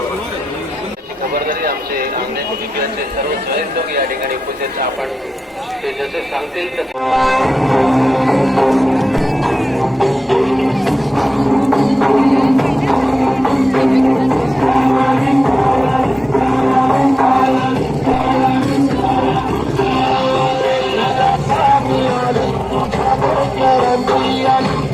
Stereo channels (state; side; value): normal; both; correlation 0.94